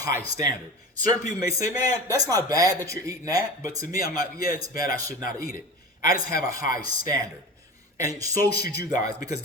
standard. Certain people may say, man, that's not bad that you're eating that. But to me, I'm like, yeah, it's bad. I should not eat it. I just have a high standard. And so should you guys, because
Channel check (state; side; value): normal; both; correlation 0.33